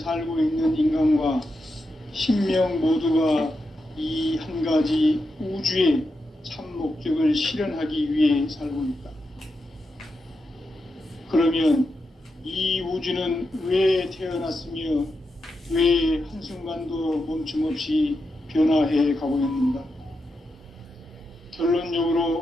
있는 인간과 신명 모두가 이 한 가지 우주의 참 목적을 실현하기 위해 살고 있다. 그러면 이 우주는 왜 태어났으며 왜 한순간도 멈춤없이 변화해 가고 있는가?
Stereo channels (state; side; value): normal; both; correlation 0.87